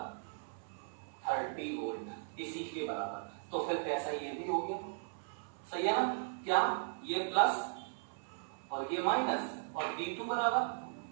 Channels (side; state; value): left; silent; 53 dB below the other